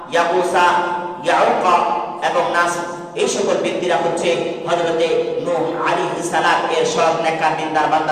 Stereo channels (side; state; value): both; identical; correlation 1.00